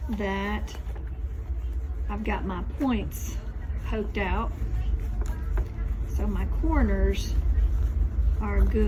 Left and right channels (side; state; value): both; identical; correlation 1.00